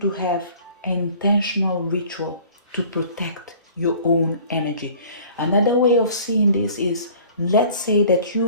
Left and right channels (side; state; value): both; inverted; correlation -0.49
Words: to have an intentional ritual to protect your own energy. Another way of seeing this is, let's say that